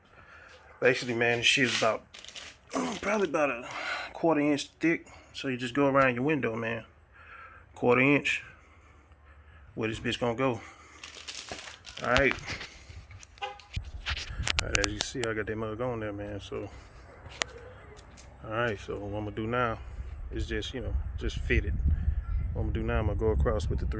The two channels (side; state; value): both; identical; correlation 1.00